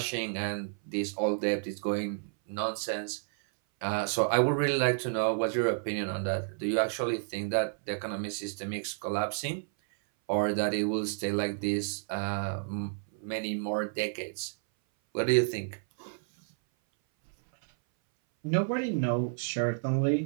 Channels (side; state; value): left; silent; 57 dB below the other